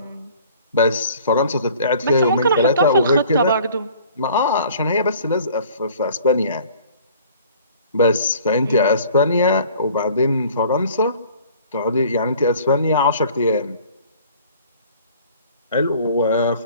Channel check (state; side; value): inverted; both; correlation -0.51